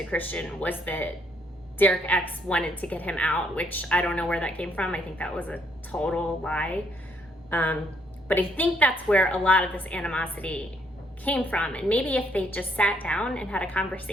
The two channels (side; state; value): both; normal; correlation 0.70